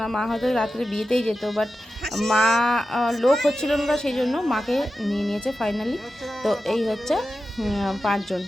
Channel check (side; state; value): both; normal; correlation 0.92